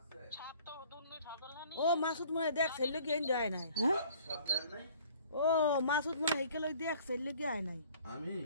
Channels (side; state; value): both; inverted; correlation -0.54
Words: ও মাসুদ মনে দেখ ছেলে কি এনে আয় নাই হ্যাঁ ও মাসুদ মনে হেকেল দেখ ছেলে কি আয় নাই আমি